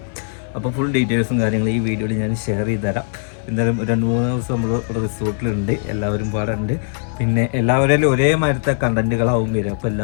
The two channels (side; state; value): right; silent; digital silence